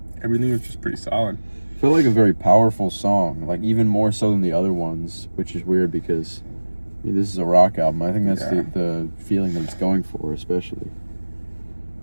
Everything was just pretty solid. Felt like a very powerful song, like even more so than the other ones, which is weird because I mean, this is a rock album. I think that's the feeling that it's going for, especially.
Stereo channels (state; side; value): inverted; both; correlation -1.00